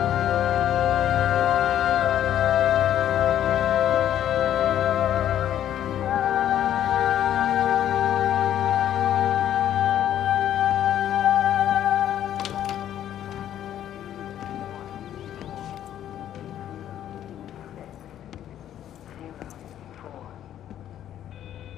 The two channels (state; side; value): quieter; right; 11.1 dB